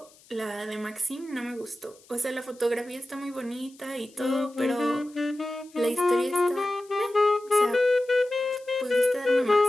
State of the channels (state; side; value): noise; left; hiss, 27 dB below the sound